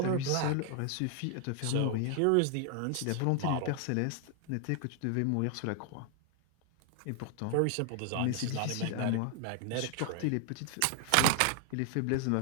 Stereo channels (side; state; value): both; different; correlation 0.00